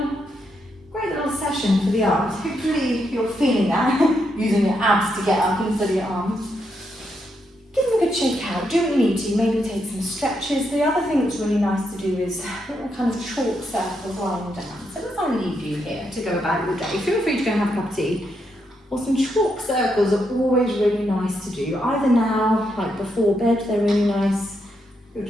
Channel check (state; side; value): normal; both; correlation 0.80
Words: session for the arms. Hopefully you're feeling that, using your abs to get up instead of your arms. Give them a good shake out, do what you need to, maybe take some stretches. The other thing that's really nice to do is little kind of chalk circles lying down. So as I leave you here to go about your day, feel free to go and have a cup of tea. Or some chalk circles are always really nice to do. Either now, like before bed, they're really nice. You're